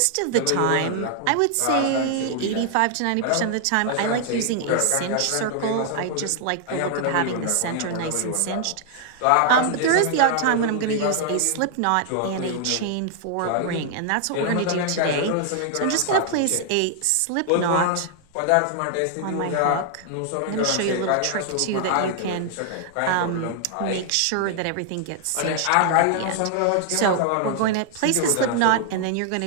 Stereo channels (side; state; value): both; different; correlation 0.00